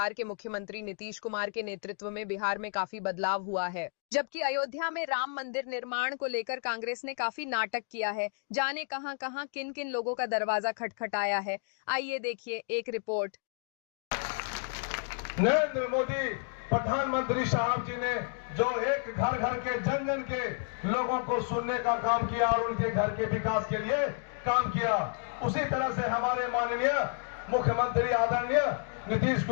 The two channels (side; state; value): right; silent; 57 dB below the other